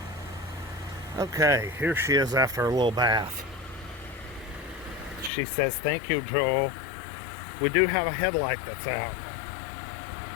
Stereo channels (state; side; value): drops out; right; at 5.3 s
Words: Okay, here she is after a little bath. She says, "Thank you, Joel." We do have a headlight that's out.